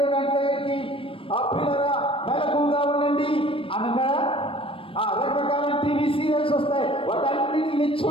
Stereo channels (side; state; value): right; late; 0.26 ms